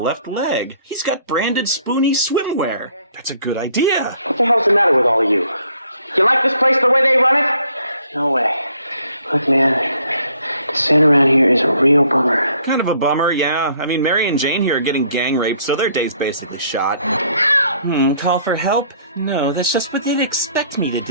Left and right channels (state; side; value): inverted; both; correlation -0.64